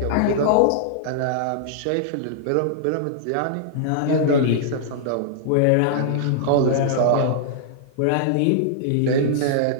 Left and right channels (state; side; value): different; both; correlation -0.02